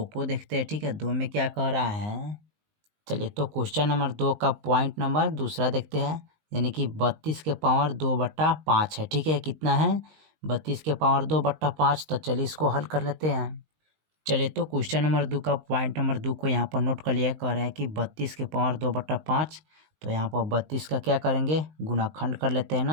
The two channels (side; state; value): left; late; 19 ms